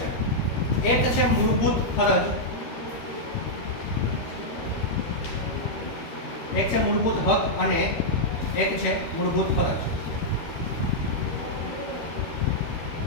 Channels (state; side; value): late; right; 13 ms